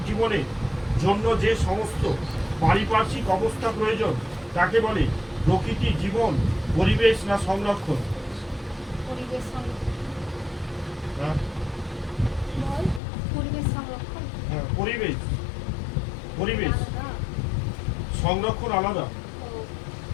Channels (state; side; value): drops out; right; at 13.0 s